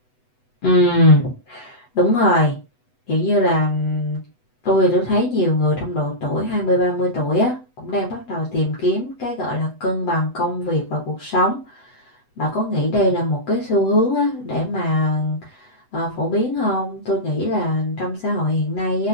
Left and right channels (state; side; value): late; right; 8.0 ms